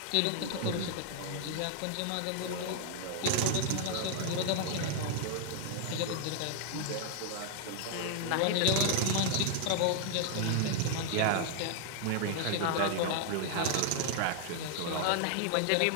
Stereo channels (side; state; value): both; different; correlation 0.00